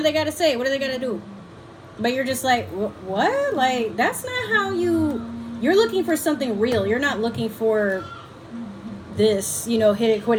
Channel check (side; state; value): both; identical; correlation 1.00